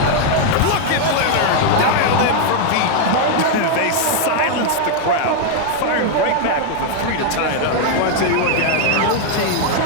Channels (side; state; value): both; different; correlation 0.00